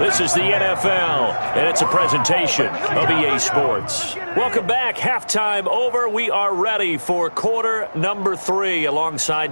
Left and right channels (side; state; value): both; inverted; correlation -1.00